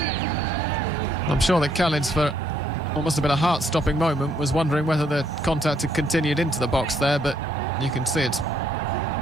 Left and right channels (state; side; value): normal; both; correlation 0.69